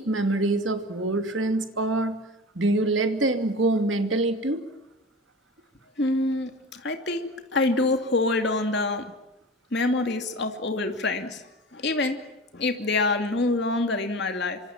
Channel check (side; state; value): both; normal; correlation 0.33